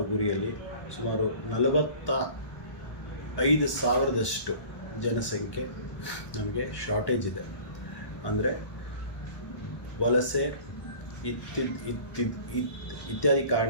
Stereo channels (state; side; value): late; right; 1.2 ms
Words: ಗುರಿಯಲ್ಲಿ ಸುಮಾರು 45,000ದಷ್ಟು ಜನಸಂಖ್ಯೆ ನಮಗೆ ಶಾರ್ಟೇಜ್ ಇದೆ. ಅಂದರೆ ವಲಸೆ ಇತ್ಯಾದಿ